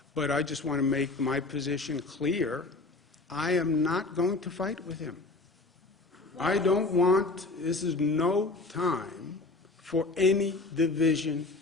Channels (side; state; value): right; quieter; 3.3 dB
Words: But I just want to make my position clear. I am not going to fight with him. I don't want, this is no time for any division